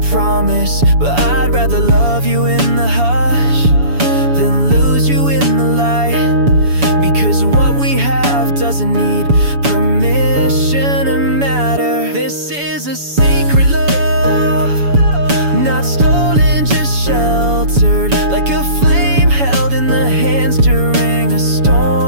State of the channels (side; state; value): left; late; 7.0 ms